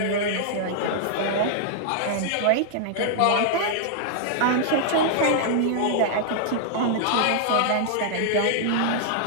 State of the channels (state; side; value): different; both; correlation -0.01